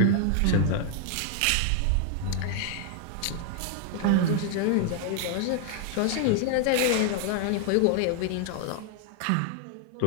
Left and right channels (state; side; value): different; both; correlation 0.00